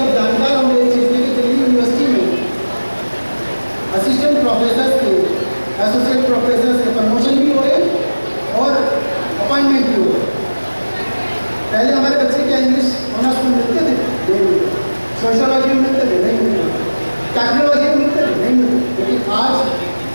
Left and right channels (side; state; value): both; inverted; correlation -1.00